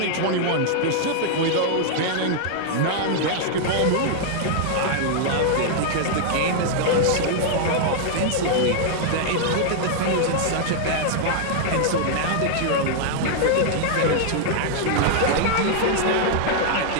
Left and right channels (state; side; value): different; both; correlation -0.01